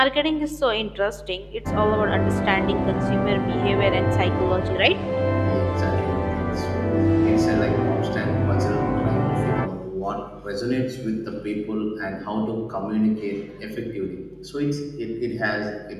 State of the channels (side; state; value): both; identical; correlation 1.00